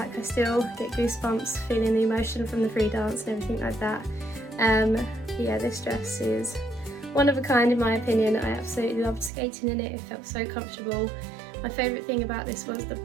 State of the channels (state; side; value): drops out; left; at 9.3 s